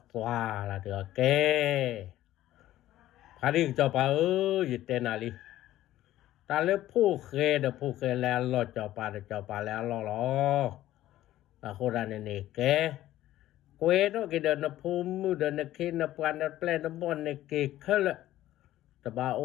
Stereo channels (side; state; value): right; quieter; 14.2 dB